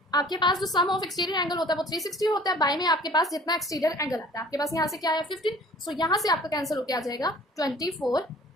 आपके पास जो सम ऑफ एक्सटीरियर एंगल होता है वो 360 होता है, बाय में आपके पास जितना एक्सटीरियर एंगल आता है, आपके पास यहाँ से क्या है 15, सो यहाँ से आपका कैंसिल होकर आ जाएगा 24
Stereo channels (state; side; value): normal; both; correlation 0.50